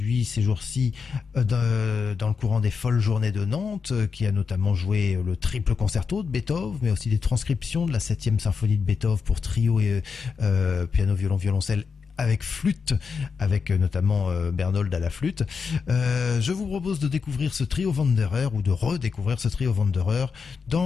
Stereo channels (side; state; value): right; quieter; 5.5 dB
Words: ces jours-ci dans le courant des folles journées de Nantes, qui a notamment joué le triple concerto de Beethoven, mais aussi des transcriptions de la 7e symphonie de Beethoven pour trio et piano, violon, violoncelle avec flûte, avec notamment Bernold à la flûte. Je vous propose de découvrir ce trio Wanderer, ou de redécouvrir ce trio Wanderer